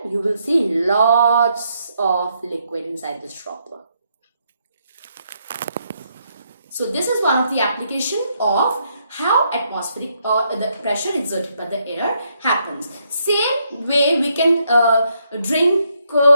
you will see lots of liquid inside this dropper. So this is one of the application of how atmospheric or the pressure exerted by the air happens. Same way we can drink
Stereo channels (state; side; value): inverted; both; correlation -0.76